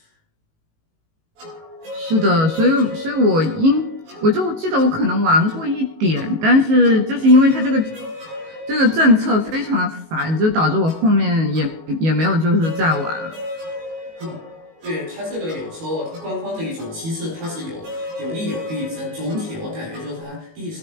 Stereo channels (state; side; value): late; left; 19 ms